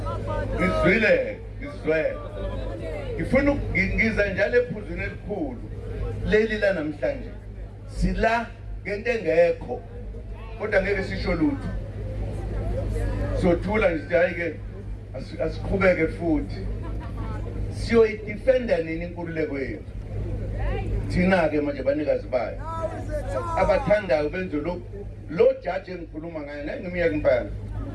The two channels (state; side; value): identical; both; correlation 1.00